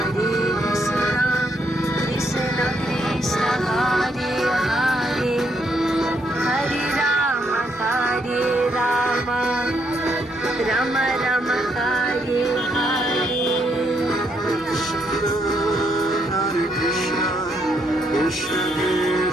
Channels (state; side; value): normal; both; correlation 0.75